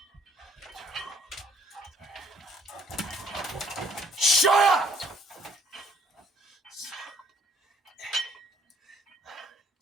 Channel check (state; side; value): normal; both; correlation 0.61